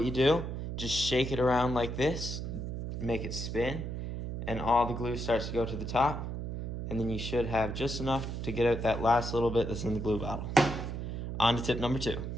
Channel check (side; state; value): right; noise; hum, 5 dB below the sound